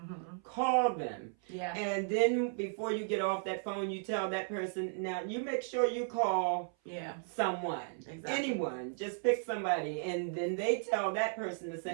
Call them. Yeah. And then before you get off that phone, you tell that person, now you make sure you call someone. Exactly. Anyone. Just pick somebody. And then they tell that person the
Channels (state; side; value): silent; left; 54 dB below the other